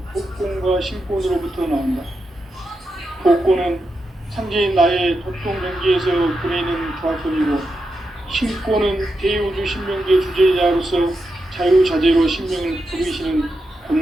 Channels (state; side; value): normal; both; correlation 0.87